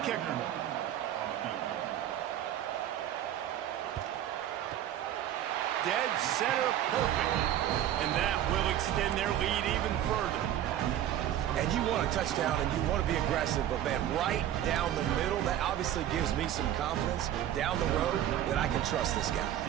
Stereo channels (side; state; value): left; quieter; 11.6 dB